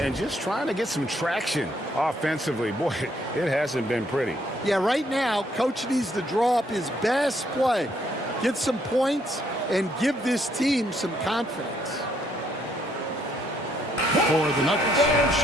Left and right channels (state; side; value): normal; both; correlation 0.70